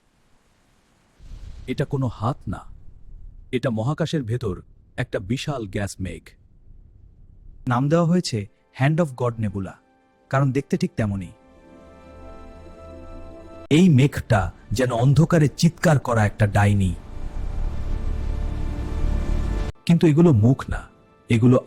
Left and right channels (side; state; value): both; identical; correlation 1.00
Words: এটা কোনো হাত না, এটা মহাকাশের ভেতর একটা বিশাল গ্যাস মেঘ। নাম দেওয়া হয়েছে হ্যান্ড অফ গড নেবুলা, কারণ দেখতে ঠিক তেমনই। এই মেঘটা যেন অন্ধকারে চিৎকার করা একটা ডাইনি। কিন্তু এগুলো মুখ না, এগুলো